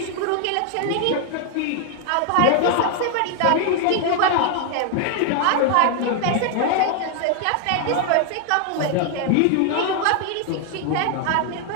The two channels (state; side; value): different; both; correlation 0.00